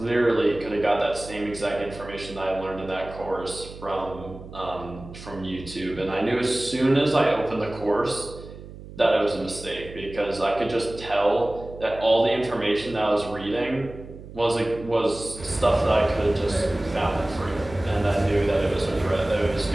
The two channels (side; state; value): right; noise; hum, 15 dB below the sound